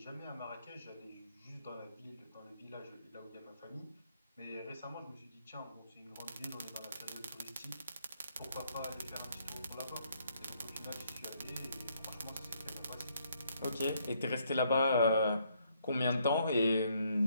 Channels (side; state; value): both; inverted; correlation -0.71